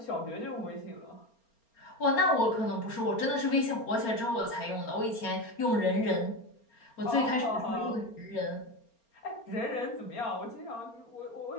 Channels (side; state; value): right; late; 4.3 ms